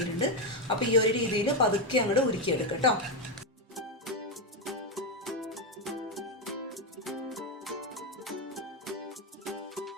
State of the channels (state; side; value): normal; both; correlation 0.06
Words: അപ്പോൾ ഈ ഒരു രീതിയിൽ പതുക്കെ അങ്ങോട്ട് ഉരുക്കിയെടുക്കുക കേട്ടോ.